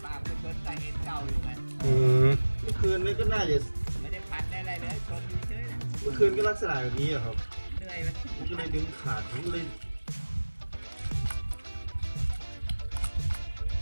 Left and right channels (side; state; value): both; inverted; correlation -1.00